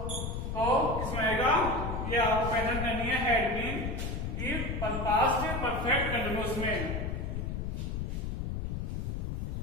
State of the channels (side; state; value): left; noise; rumble, 3 dB below the sound